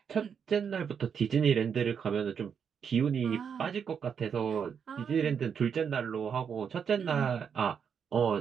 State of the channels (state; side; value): quieter; left; 7.1 dB